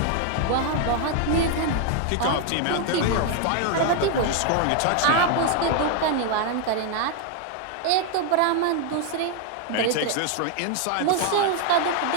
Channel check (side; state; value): both; different; correlation 0.00